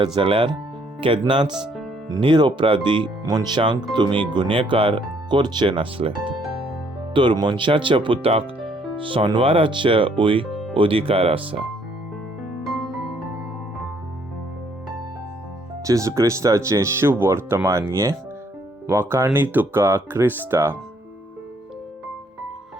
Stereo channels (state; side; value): normal; both; correlation 0.66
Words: जाल्यार केन्नाच निरपराधी मनशांक तुमी गुन्हेगार करचे नासले. तर मनशाच्या पुताक सोनवाराचेय अधिकार आसा. जेजू क्रिस्ताचें शुभ वर्तमान हें. वाखाणणी तुका क्रिस्ता.